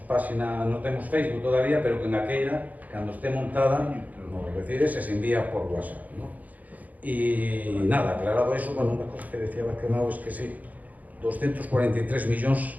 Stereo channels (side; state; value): left; late; 0.079 ms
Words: página, non temos Facebook todavía, pero que na queira, cando este montada, nos recibes e se envía por WhatsApp, ¿no? E nada, aclarado eso, bueno, unha cosa que decía Vázquez Mao es que sí, 243 millóns